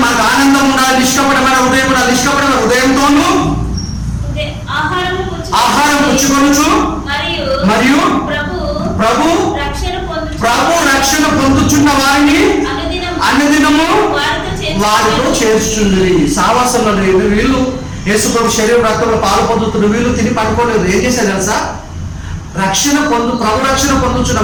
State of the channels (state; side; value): identical; both; correlation 1.00